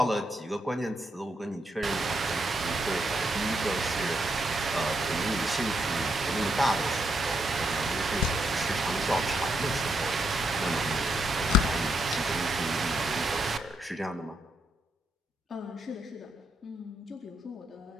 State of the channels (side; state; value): both; normal; correlation 0.78